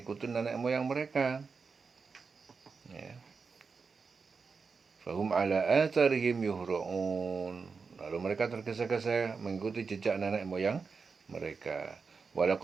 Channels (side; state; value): left; quieter; 5.0 dB